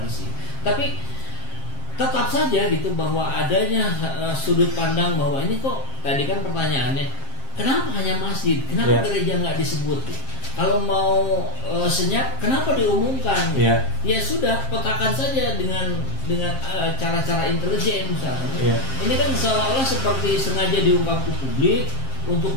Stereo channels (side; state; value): right; late; 7.5 ms